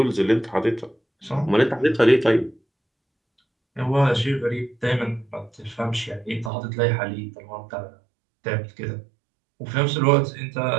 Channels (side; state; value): left; drops out; at 6.5 s